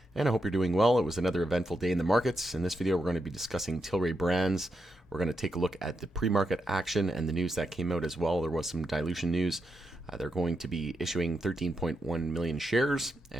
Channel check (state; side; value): normal; both; correlation 0.85